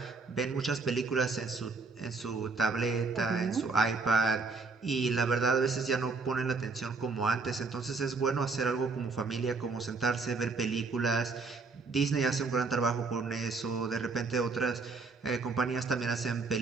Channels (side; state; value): left; quieter; 4.2 dB